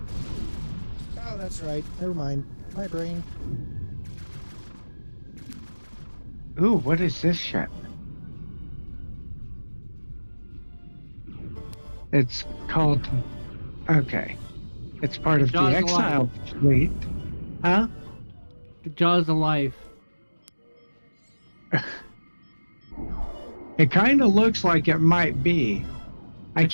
Oh, that's right. Never mind. My brain. Ooh, what is this ship? It's called... Okay. It's part of the Jaws of Exile fleet. Huh? The Jaws of Life. It kind of looks like it might be. I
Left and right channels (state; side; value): inverted; both; correlation -1.00